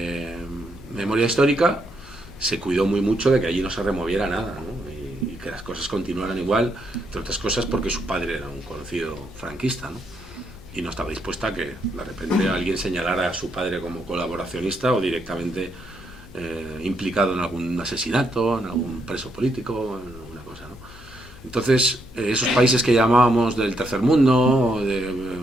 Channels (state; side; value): noise; left; hum, 20 dB below the sound